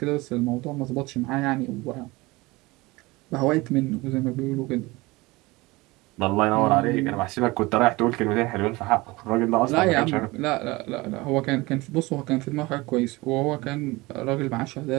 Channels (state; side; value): quieter; left; 22.1 dB